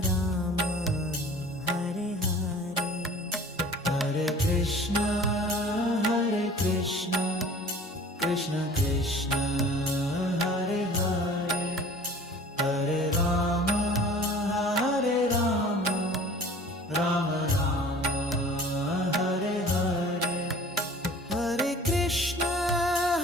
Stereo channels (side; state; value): both; normal; correlation 0.46